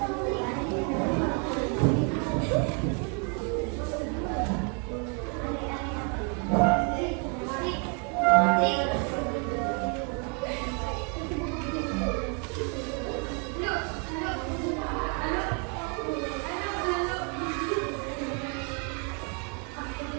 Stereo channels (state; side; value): quieter; left; 37.5 dB